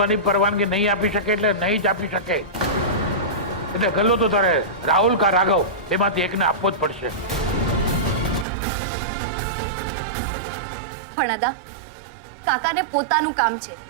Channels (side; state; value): left; drops out; at 8.5 s